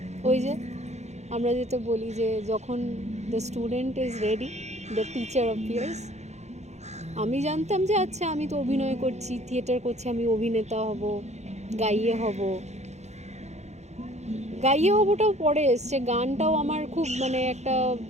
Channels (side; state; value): left; late; 0.33 ms